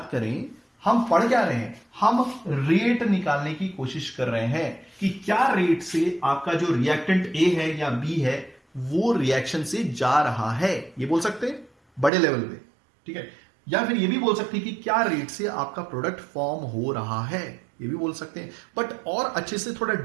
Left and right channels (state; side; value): drops out; left; at 12.1 s